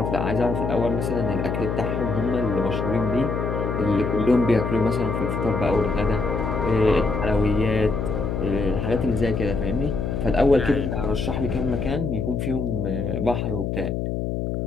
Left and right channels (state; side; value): noise; left; hum, 2 dB below the sound